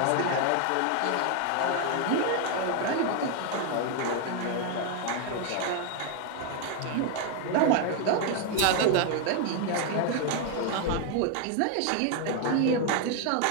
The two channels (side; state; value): both; different; correlation 0.01